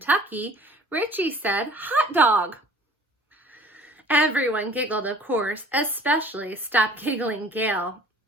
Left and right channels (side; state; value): both; normal; correlation 0.50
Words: Richie said, hot dog. Everyone giggled, of course, especially Stop Giggling Gail,